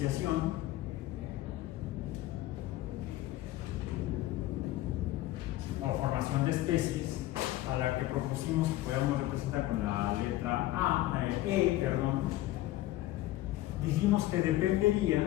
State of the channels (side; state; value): right; quieter; 16.0 dB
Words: o formación de especies, a la que propusimos que podíamos representar con la letra dijimos que dependería